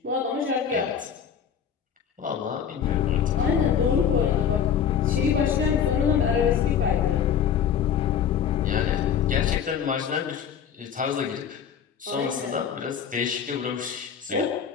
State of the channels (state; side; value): quieter; right; 8.0 dB